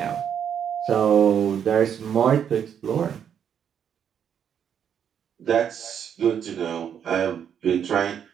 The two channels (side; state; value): left; quieter; 8.4 dB